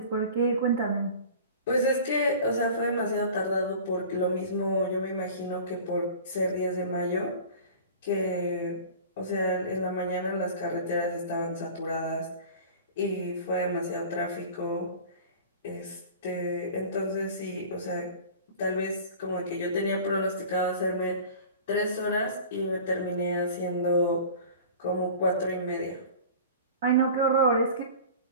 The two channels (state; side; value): inverted; both; correlation -0.40